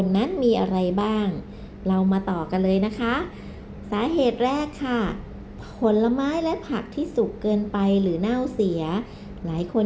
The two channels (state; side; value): identical; both; correlation 1.00